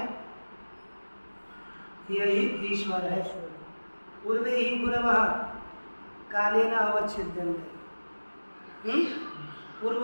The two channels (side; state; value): both; inverted; correlation -1.00